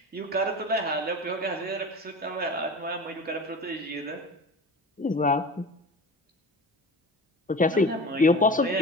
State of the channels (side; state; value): both; normal; correlation 0.35